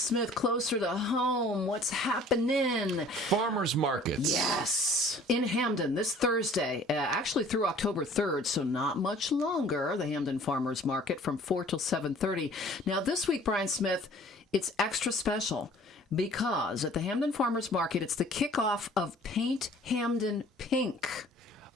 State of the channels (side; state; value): both; normal; correlation 0.52